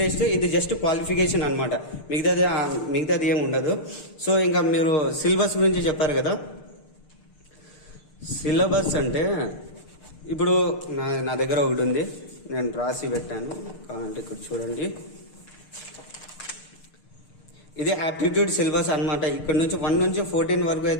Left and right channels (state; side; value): late; right; 6.7 ms